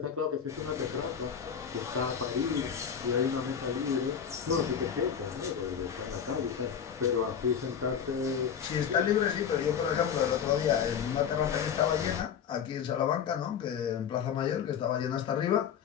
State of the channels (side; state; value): right; quieter; 7.8 dB